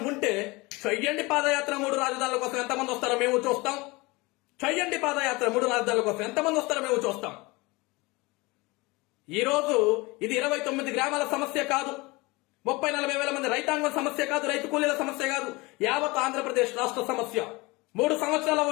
ఉంటే చెయ్యండి పాదయాత్ర. 3 రాజధానుల కోసం ఎంతమంది వస్తారో మేము చూస్తాం. చెయ్యండి పాదయాత్ర. 3 రాజధానుల కోసం ఎంతమంది వస్తారో మేము చూస్తాం. ఈ రోజు ఇది 29 గ్రామాల సమస్య కాదు, 30-40 వేల మంది రైతాంగం సమస్య కాదు, రైతు కూలీల సమస్య కాదు, యావత్ ఆంధ్రప్రదేశ్ రాష్ట్ర సమస్య. 3 సంవత్సరాలు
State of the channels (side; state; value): right; quieter; 24.0 dB